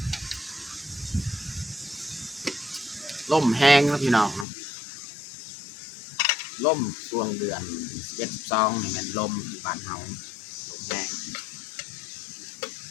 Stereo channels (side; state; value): right; drops out; at 4.5 s